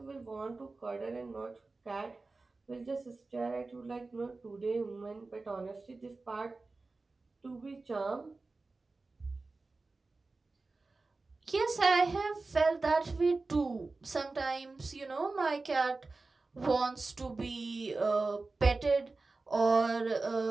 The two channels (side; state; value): left; quieter; 3.6 dB